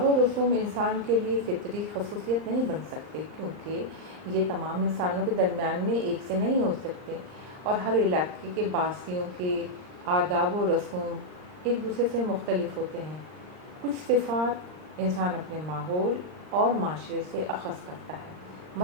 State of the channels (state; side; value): late; left; 39 ms